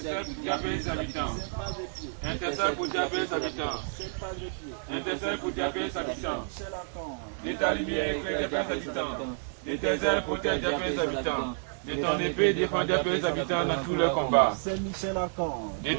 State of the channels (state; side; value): silent; left; digital silence